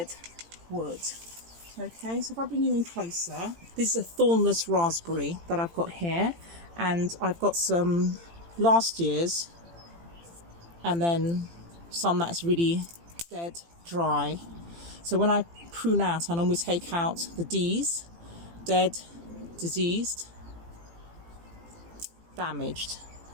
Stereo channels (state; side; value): late; left; 18 ms